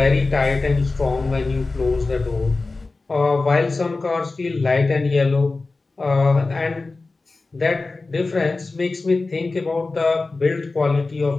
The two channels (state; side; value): quieter; right; 3.6 dB